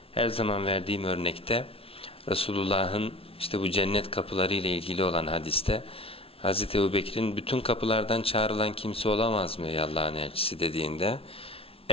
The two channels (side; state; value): right; late; 0.27 ms